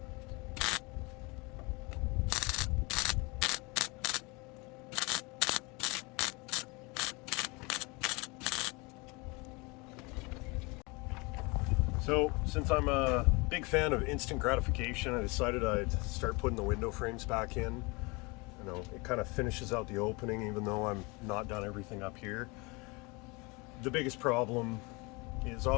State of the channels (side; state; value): right; quieter; 27.2 dB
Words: So since I'm a big fan of instant gratification, I decided I'd start putting the window frames back in. You know, it kind of finishes out the opening even though I'm not done everything up here. The biggest problem is